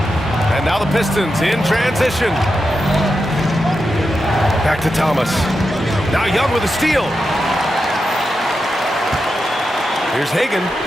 And now the Pistons in transition. Back to Thomas. Now Young with a steal. Here's Hagan.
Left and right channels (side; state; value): both; normal; correlation 0.88